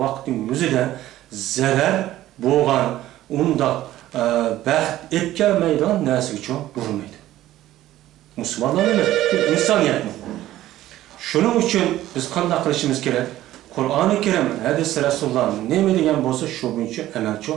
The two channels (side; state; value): left; quieter; 14.4 dB